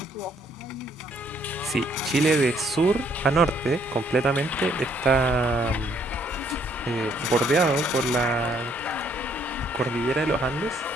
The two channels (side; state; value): both; normal; correlation 0.67